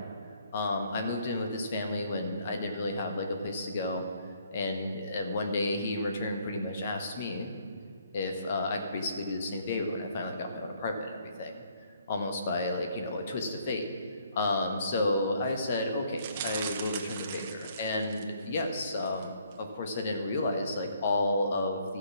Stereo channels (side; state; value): both; inverted; correlation -0.66